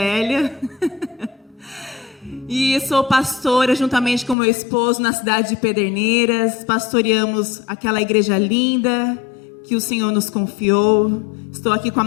E sou pastora juntamente com meu esposo na cidade de Pederneiras. Pastoreamos aquela igreja linda que o Senhor nos confiou. Estou aqui com a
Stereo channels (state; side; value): drops out; right; at 4.4 s